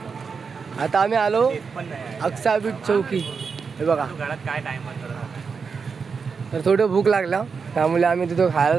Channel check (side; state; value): left; quieter; 5.5 dB